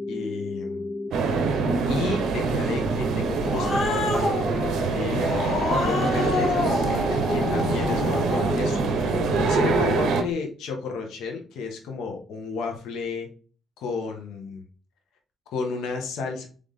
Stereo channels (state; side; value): normal; both; correlation 0.63